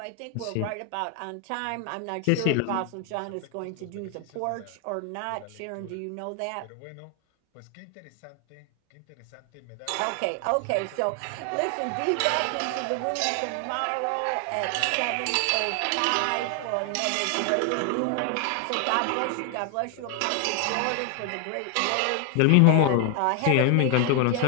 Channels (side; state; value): both; different; correlation 0.00